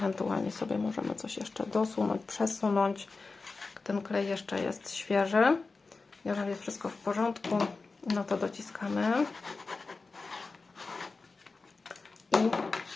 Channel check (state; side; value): quieter; right; 4.0 dB